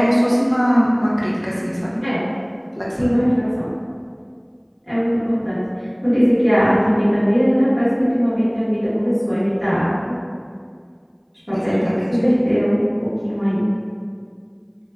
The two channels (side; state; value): both; identical; correlation 1.00